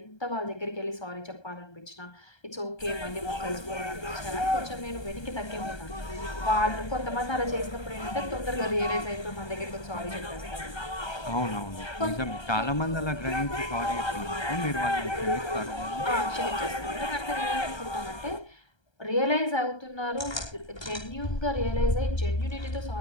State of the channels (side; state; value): right; late; 1.3 ms